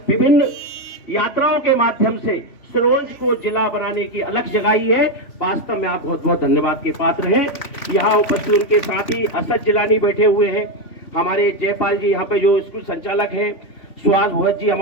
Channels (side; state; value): right; late; 3.1 ms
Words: विभिन्न यात्राओं के माध्यम से सिरोंज को जिला बनाने की अलग जगाई है। वास्तव में आप बहुत बहुत धन्यवाद के पात्र हैं। यहाँ उपस्थित उनके साथ ही असद जिलानी बैठे हुए हैं, हमारे जयपाल जी यहाँ पे जो स्कूल संचालक हैं, सुहास भगत जी